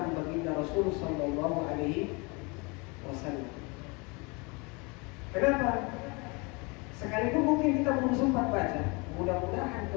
baginda Rasul Sallallahu Alaihi Wasallam. Kenapa? Sekalipun mungkin kita belum sempat baca, mudah-mudahan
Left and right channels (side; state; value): right; quieter; 29.0 dB